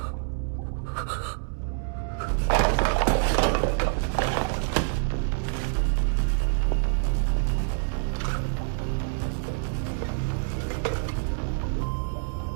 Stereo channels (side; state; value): left; silent; 60 dB below the other